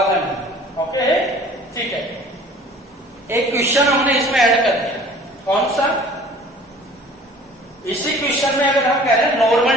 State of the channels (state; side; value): normal; both; correlation 0.48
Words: m। ओके, ठीक है। एक क्वेश्चन हमने इसमें ऐड कर दिया, कौन सा? इसी क्वेश्चन में अगर हम कह रहे हैं